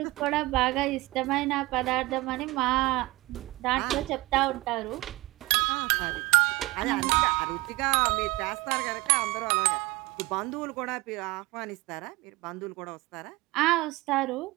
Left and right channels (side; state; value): left; quieter; 21.0 dB